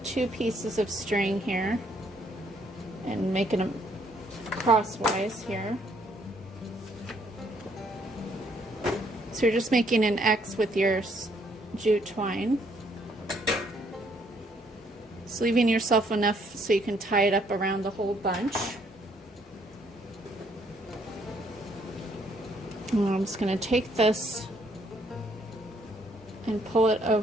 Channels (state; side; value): normal; both; correlation 0.68